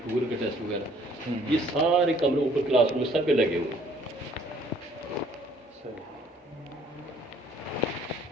का टेस्ट वगैरह, ये सारे कमरे ऊपर क्लासरूम में सब पे लगे हुए हैं।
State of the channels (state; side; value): normal; both; correlation 0.59